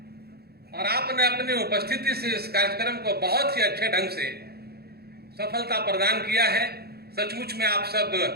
और आपने अपनी उपस्थिति से इस कार्यक्रम को बहुत ही अच्छे ढंग से सफलता प्रदान किया है। सचमुच में आप सब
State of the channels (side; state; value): left; late; 0.46 ms